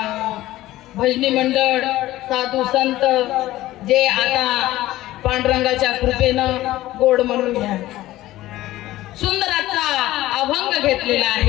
भजनी मंडळ साधू संत जे आता पांडुरंगाच्या कृपेनं गोड म्हणून घ्या सुंदराचा अभंग घेतलेला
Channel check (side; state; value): right; quieter; 15.9 dB